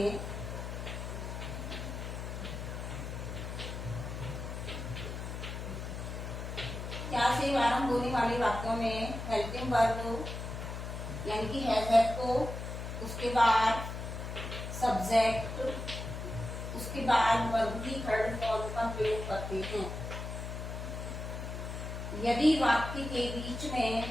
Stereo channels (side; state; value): left; noise; hum, 6 dB below the sound